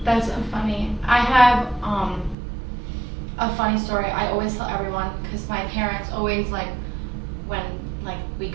That's so funny. I have a funny story I always tell everyone, because my parents always when we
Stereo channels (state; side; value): drops out; left; at 2.4 s